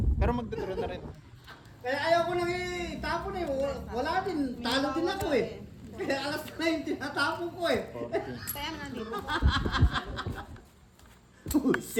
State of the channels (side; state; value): both; identical; correlation 1.00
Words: Pero magdadraw na rin. Kaya ayaw ko nang itapon eh. Wala din. Talo din ako eh. Kaya alas na yung tinatapon ko eh. Kaya nga, di ba? Oh,